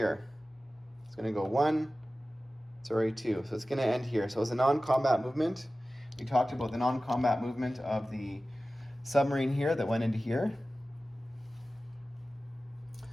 It's going to go 1, 2. So it's going to end here. So it's a non-combat movement. We talked about the non-combat movement of the submarine here that went into here.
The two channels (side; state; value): both; normal; correlation 0.96